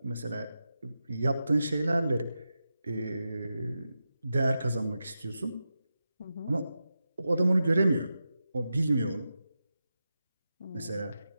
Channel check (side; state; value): both; inverted; correlation -0.90